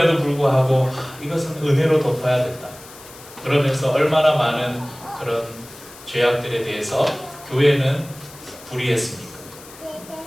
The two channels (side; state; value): left; noise; hiss, 19 dB below the sound